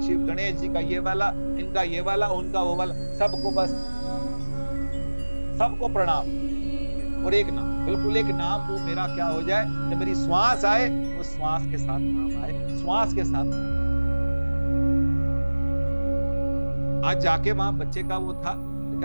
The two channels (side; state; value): both; inverted; correlation -1.00